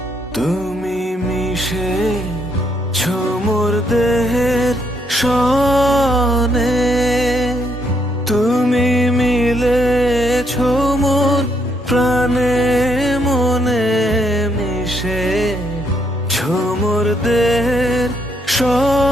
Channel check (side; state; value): both; normal; correlation 0.73